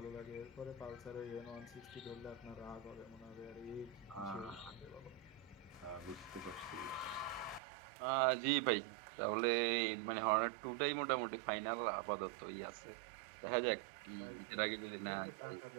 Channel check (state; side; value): drops out; left; at 7.6 s